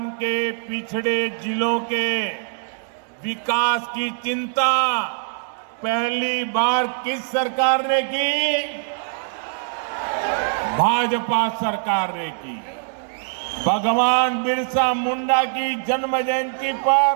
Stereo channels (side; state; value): left; silent; digital silence